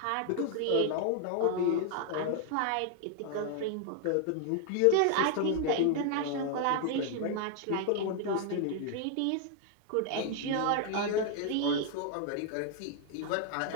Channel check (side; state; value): both; different; correlation 0.00